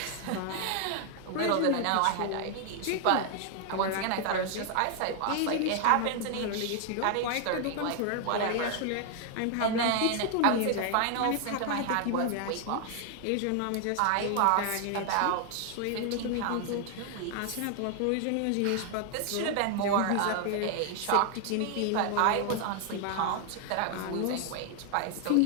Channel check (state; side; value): different; both; correlation 0.00